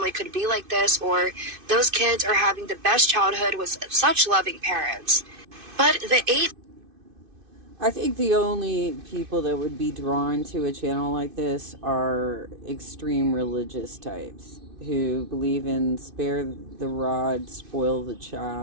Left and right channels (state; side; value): late; left; 2.5 ms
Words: could be like this," or "Those kids are having the best childhood with such loving parents." But the 8... I think the only people that would be drawn to a channel like this are extreme religious types who believe in spare the rod, spoil the